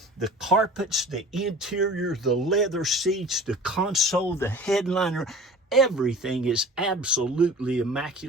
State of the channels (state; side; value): normal; both; correlation 0.42